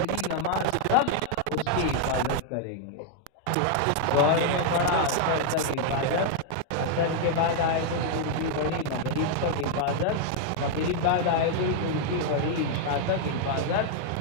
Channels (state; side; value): different; both; correlation 0.00